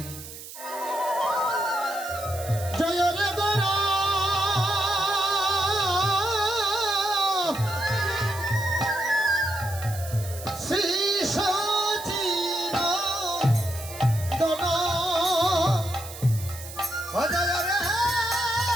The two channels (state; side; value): noise; right; hiss, 13 dB below the sound